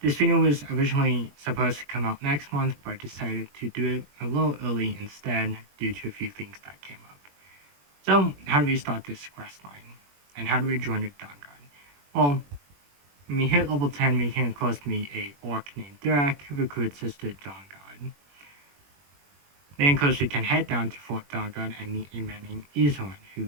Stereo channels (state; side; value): late; left; 21 ms